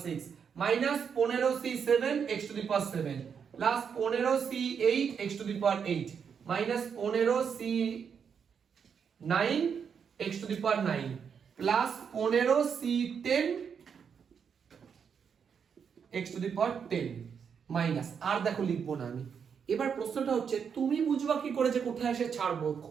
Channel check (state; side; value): quieter; left; 6.9 dB